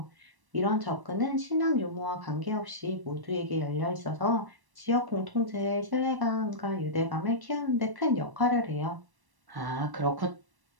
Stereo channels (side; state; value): left; late; 1.1 ms